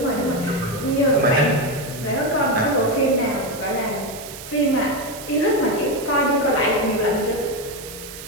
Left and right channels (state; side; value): noise; right; hiss, 13 dB below the sound